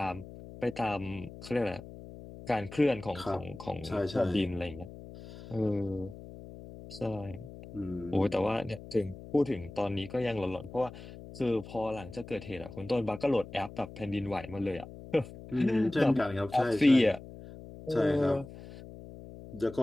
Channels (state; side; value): noise; left; hum, 15 dB below the sound